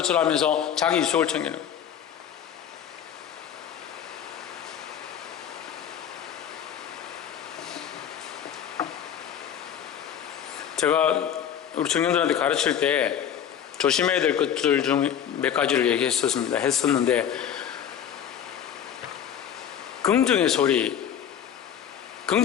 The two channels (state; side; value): quieter; right; 9.1 dB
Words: 하면서 자기 이속을 챙기는 거예요. 제가 우리 청년들한테 가르칠 때 조심해야 될 것들 중 몇 가지를 했었는데 긍정의 소리를